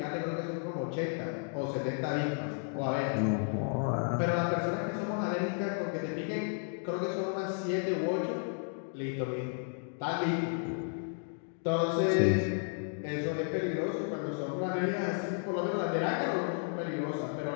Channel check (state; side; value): silent; right; 56 dB below the other